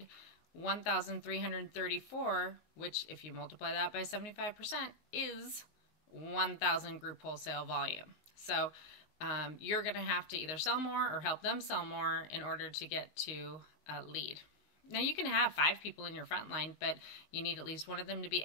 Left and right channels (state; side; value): late; right; 19 ms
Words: 1,334, which if you multiply that by 75% is 1,000 group wholesale volume. So you're going to have to either sell more or help them sell more in order to get to a lead. Now you can have 5 people in your front line, but you need at least one of them to be